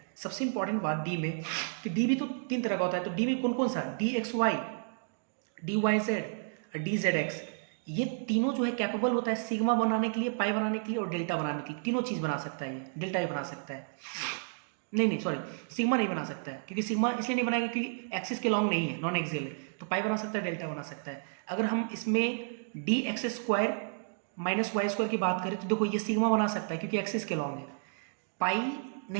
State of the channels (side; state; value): left; silent; digital silence